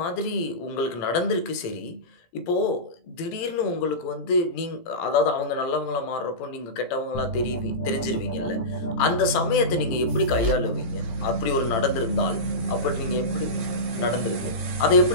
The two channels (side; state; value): right; late; 17 ms